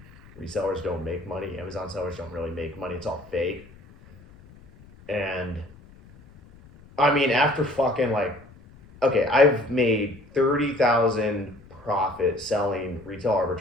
Resellers don't make money. Amazon sellers don't really make money. It's all fake. And I mean, after fucking like, okay, I've made 30,000 profit selling retail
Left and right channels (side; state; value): left; noise; rumble, 23 dB below the sound